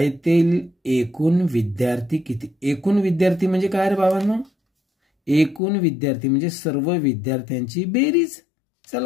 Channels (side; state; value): right; drops out; at 5.6 s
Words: एकूण विद्यार्थी किती? एकूण विद्यार्थी म्हणजे काय रे बाबांनो? एकूण विद्यार्थी म्हणजे सर्व विद्यार्थ्यांची बेरीज.